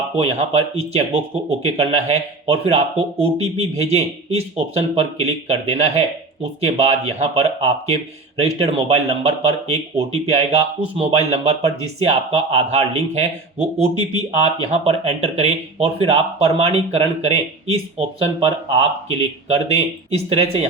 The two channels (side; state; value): left; quieter; 3.3 dB